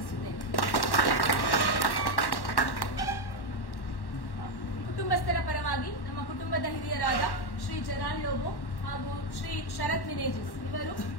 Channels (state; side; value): late; right; 1.1 ms